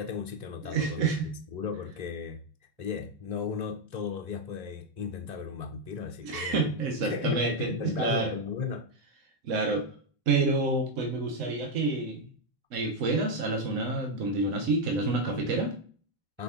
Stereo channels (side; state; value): left; late; 3.7 ms